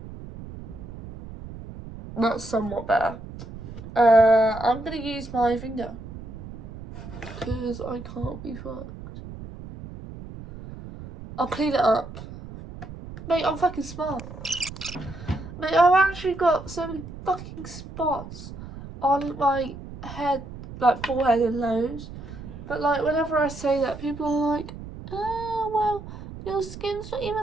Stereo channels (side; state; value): right; noise; rumble, 13 dB below the sound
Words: That's somewhat better. I'm gonna use my finger, because I can't be fucked. I'll clean it up. Mate, I'm fucking smart. Mate, I've actually got so many fucking spots on my head, like forehead and nose. But like, whenever I say that, people are like, oh, well, your skin's not